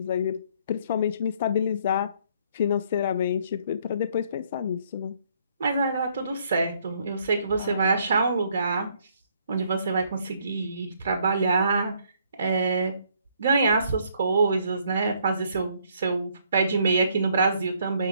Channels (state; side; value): inverted; both; correlation -0.67